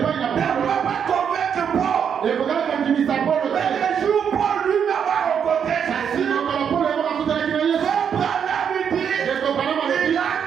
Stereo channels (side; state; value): left; quieter; 7.7 dB